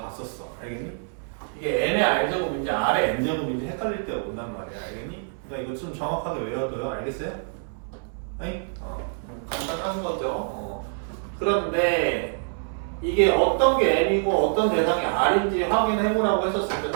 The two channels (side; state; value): left; silent; digital silence